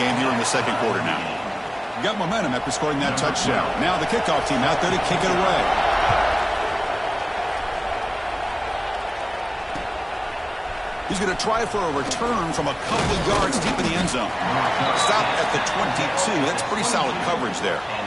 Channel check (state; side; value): identical; both; correlation 1.00